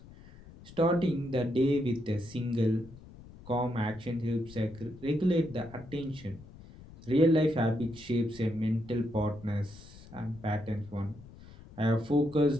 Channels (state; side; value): noise; left; rumble, 19 dB below the sound